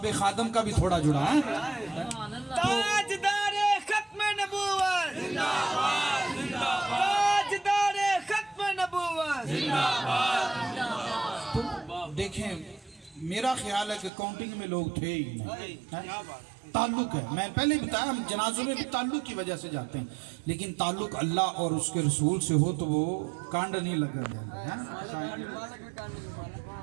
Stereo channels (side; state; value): left; drops out; at 14.1 s